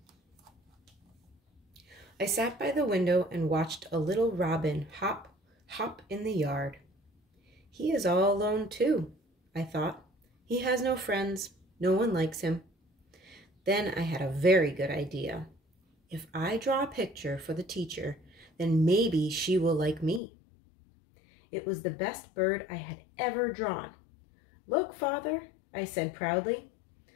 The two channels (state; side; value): drops out; right; at 20.2 s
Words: I sat by the window and watched a little robin hop, hop in the yard. He is all alone too, I thought. He has no friends. No one likes him. Then I had a very good idea. If I draw a picture for the teacher, then maybe she will like me. It was the best bird I had ever drawn. Look, Father, I said proudly.